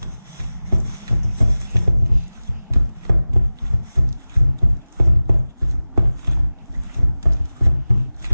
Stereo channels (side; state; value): both; inverted; correlation -0.97